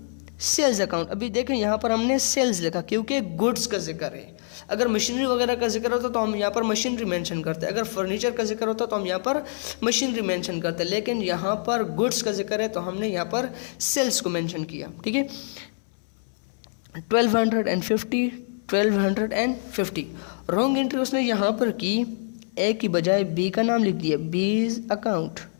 sales account. अभी देखें यहाँ पर हमने सेल्स लिखा क्योंकि गुड्स का जिक्र है। अगर मशीनरी वगैरह का जिक्र होता तो हम यहाँ पर मशीनरी मेंशन करते, अगर फर्नीचर का जिक्र होता तो हम यहाँ पर मशीनरी मेंशन करते, लेकिन यहाँ पर गुड्स का जिक्र है तो हमने यहाँ पर सेल्स को मेंशन किया। ठीक है, 1250 रॉन्ग एंट्री उसने यहाँ पर की, ए की बजाय बी का नाम लिख दिया, बीज अकाउंट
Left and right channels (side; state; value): right; silent; 61 dB below the other